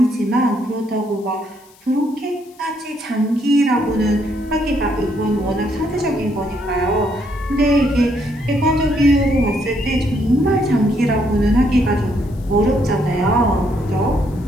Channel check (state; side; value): noise; left; hiss, 28 dB below the sound